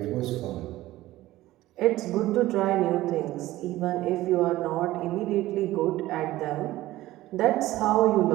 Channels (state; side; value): quieter; left; 16.3 dB